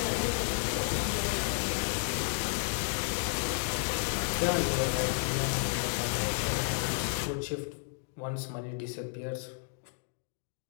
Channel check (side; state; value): right; silent; digital silence